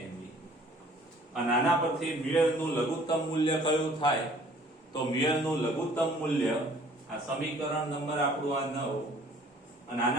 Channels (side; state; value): both; normal; correlation 0.54